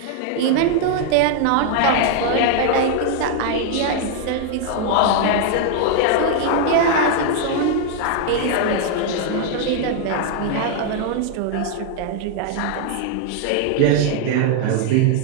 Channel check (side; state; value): both; different; correlation 0.00